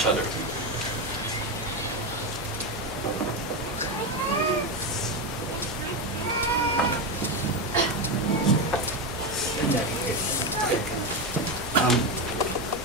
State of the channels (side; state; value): both; normal; correlation 0.12